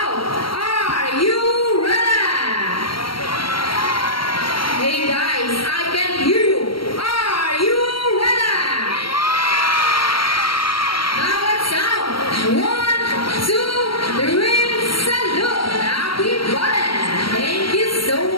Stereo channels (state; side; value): late; right; 0.74 ms